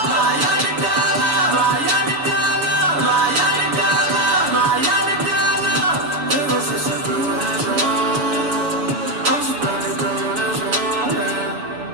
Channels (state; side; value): late; left; 6.9 ms